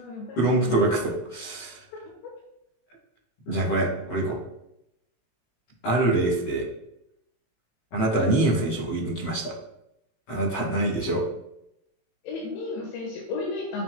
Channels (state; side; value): late; right; 18 ms